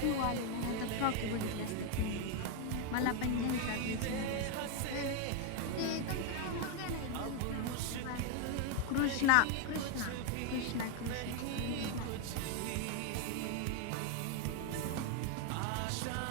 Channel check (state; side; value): different; both; correlation 0.01